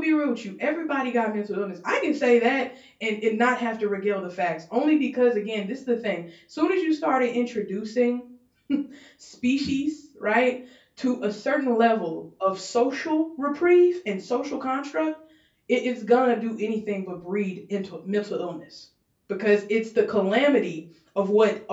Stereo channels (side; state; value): both; identical; correlation 1.00